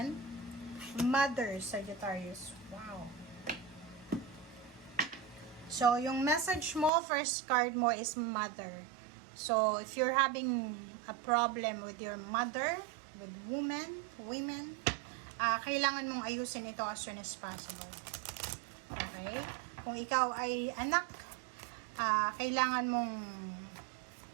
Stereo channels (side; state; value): left; drops out; at 6.9 s